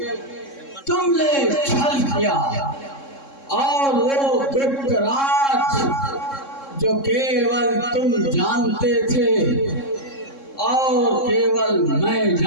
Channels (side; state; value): right; late; 3.7 ms